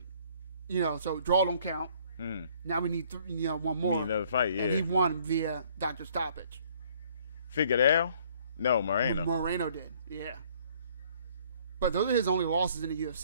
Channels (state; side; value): inverted; both; correlation -0.60